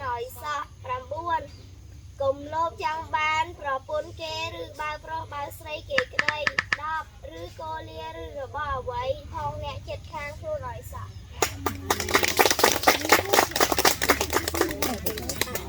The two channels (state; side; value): identical; both; correlation 1.00